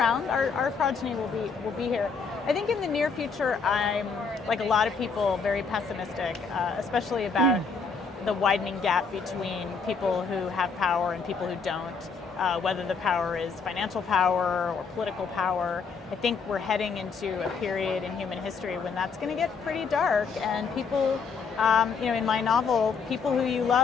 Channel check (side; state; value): right; quieter; 5.2 dB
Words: Our progeny will be here. I think in the near future, I'm, like a lot of people, very pessimistic, especially about the widening gap between people who have power and people who don't. Whether the power is financial power or political power. I think we're heading into a period in human history when that's going to get pretty dark, and people, in my novel, people who you